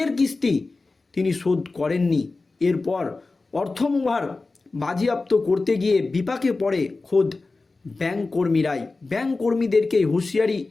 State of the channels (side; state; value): right; quieter; 3.6 dB